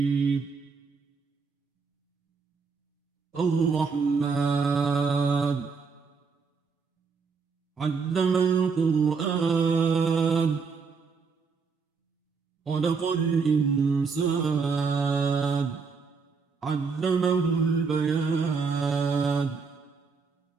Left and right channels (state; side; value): quieter; left; 5.1 dB